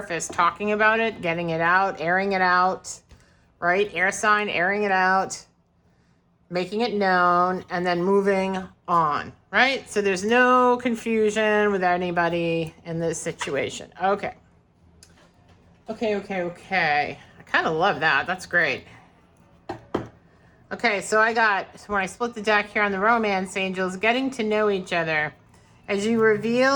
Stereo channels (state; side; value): identical; both; correlation 1.00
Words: talking about it, getting it out, airing it out, right? Air sign, airing it out, making it known, and then moving on, right? So there's no confusion with anybody in this situation. Okay. Okay. I kind of love that. That's great. Okay, so when I split the deck here on the romance angels, getting to know each other. As you